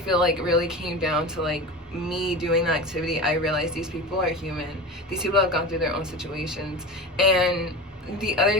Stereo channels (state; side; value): normal; both; correlation 0.30